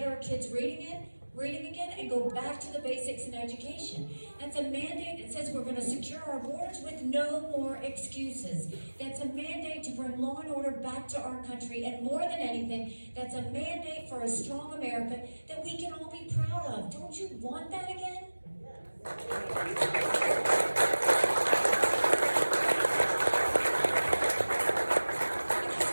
our kids reading again, and go back to the basics in education. That's a mandate that says we're going to secure our borders with no more excuses. That's a mandate to bring law and order back to our country. And more than anything, that's a mandate for a strong America that we can all be proud of. Don't you want that again? Because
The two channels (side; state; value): both; inverted; correlation -1.00